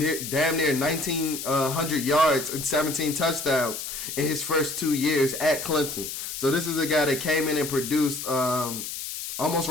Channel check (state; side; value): noise; left; hiss, 7 dB below the sound